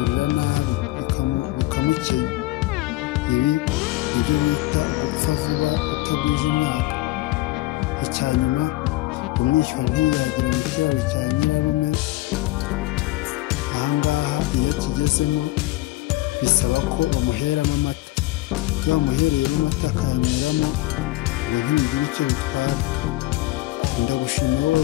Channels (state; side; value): quieter; right; 18.3 dB